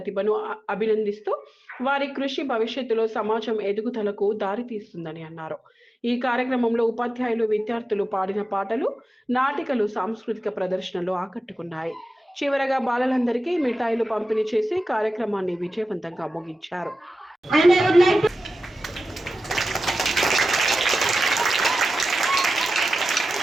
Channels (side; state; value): both; normal; correlation 0.93